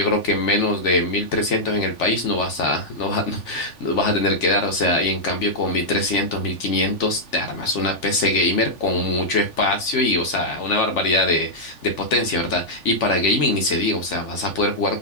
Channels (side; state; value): right; late; 3.4 ms